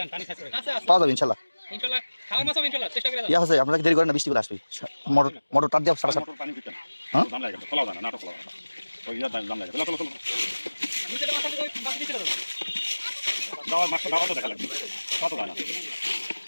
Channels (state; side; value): inverted; both; correlation -1.00